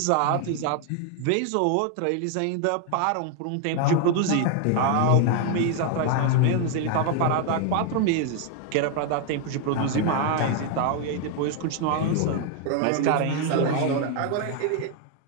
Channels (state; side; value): different; both; correlation 0.00